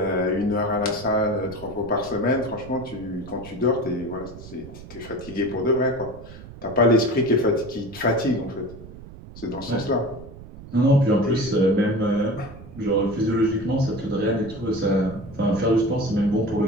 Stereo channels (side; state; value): right; noise; rumble, 16 dB below the sound